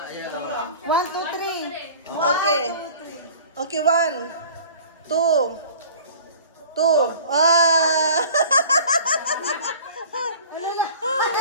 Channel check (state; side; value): inverted; both; correlation -0.45